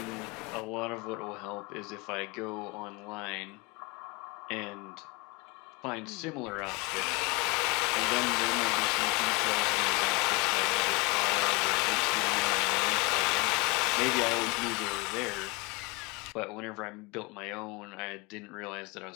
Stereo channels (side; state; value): right; quieter; 27.3 dB